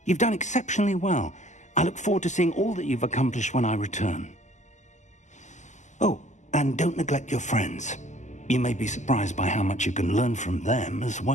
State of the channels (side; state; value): right; late; 0.34 ms